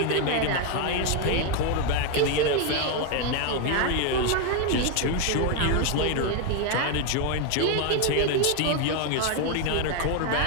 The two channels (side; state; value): both; different; correlation 0.01